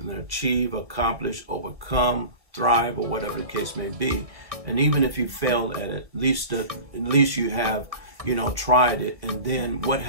achieve, accomplish, overcome, thrive, or whatever the case may be. And even if you failed at it, at least you have, tried it. And then what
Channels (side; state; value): left; late; 1.6 ms